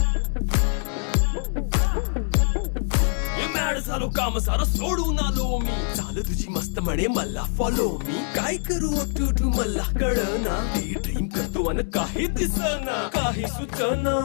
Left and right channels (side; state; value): right; silent; 62 dB below the other